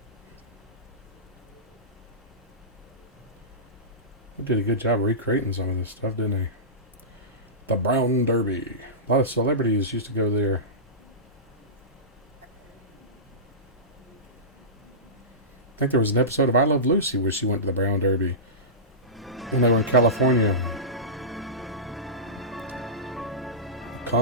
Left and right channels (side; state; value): both; normal; correlation -0.20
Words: They did a good job recreating some of this stuff, didn't they? The Brown Derby. A lot of celebrities used to go there. I think there was an episode of I Love Lucy where she went to the Brown Derby when they were in California.